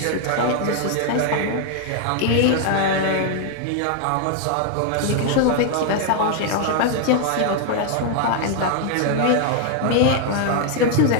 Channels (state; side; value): different; both; correlation 0.00